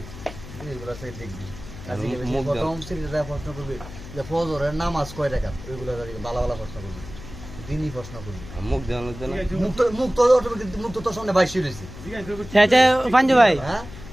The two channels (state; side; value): noise; left; hum, 14 dB below the sound